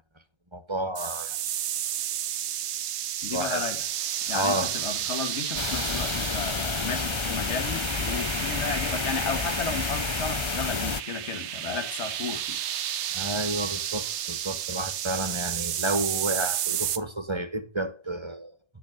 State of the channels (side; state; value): left; late; 1.3 ms